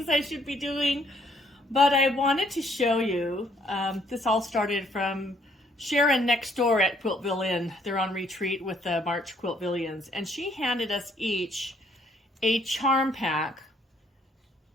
I should be doing, but I wanted to show you. This all started from Sharon next door at Quiltville Inn. They're on retreat with the March Quiltvillians, and she handed us each a charm pack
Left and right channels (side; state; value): both; normal; correlation 0.66